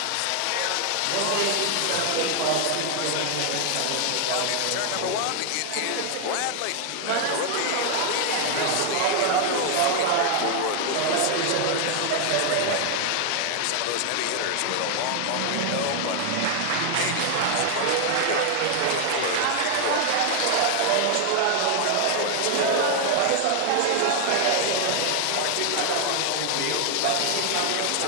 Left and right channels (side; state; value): both; different; correlation 0.00